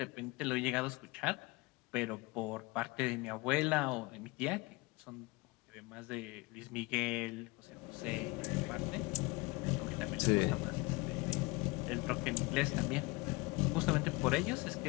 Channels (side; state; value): right; quieter; 24.4 dB